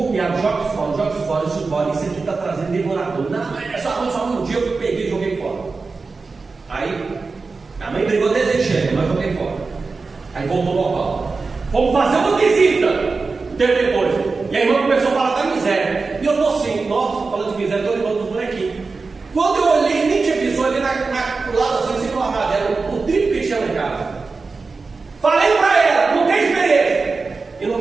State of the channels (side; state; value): left; quieter; 4.2 dB